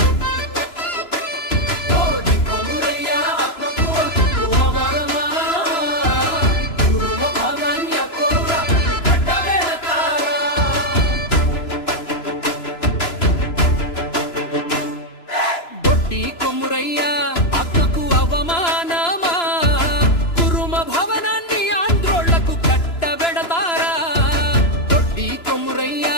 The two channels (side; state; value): right; late; 3.0 ms